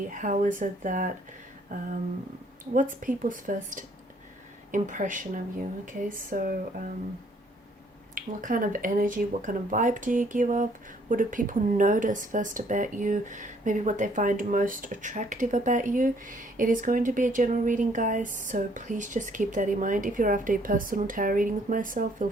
how is it that, what's people's first impression of you, okay? So, what kind of energy, what kind of vibe do you give off? What do people notice first about you? Maybe what they find most attractive about you. It is going to be a general reading, guys, so please just keep that in mind. If you're after a personal tarot reading with myself, feel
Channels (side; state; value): both; normal; correlation 0.64